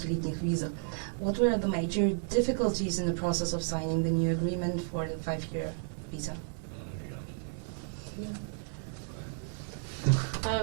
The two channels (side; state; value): left; silent; 56 dB below the other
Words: визах? What were the major difficulties in the process of signing the new agreement for the 5-year visa?